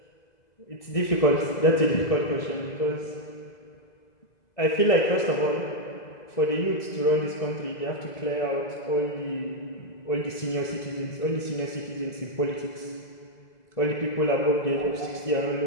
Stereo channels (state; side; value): late; right; 2.0 ms